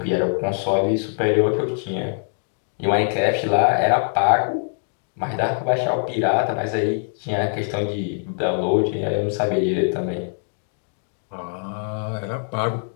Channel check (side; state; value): right; silent; digital silence